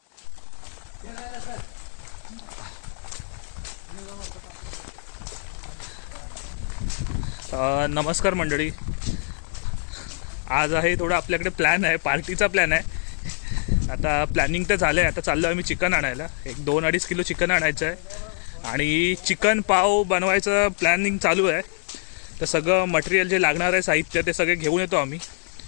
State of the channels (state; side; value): silent; right; digital silence